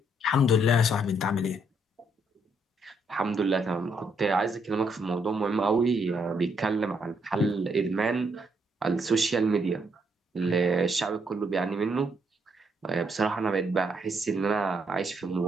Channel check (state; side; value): normal; both; correlation 0.73